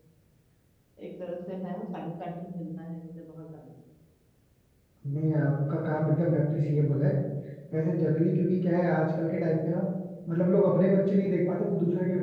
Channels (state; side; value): identical; both; correlation 1.00